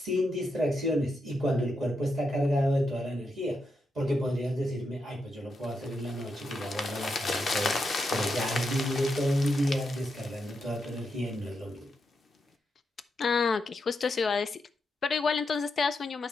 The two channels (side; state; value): both; normal; correlation 0.84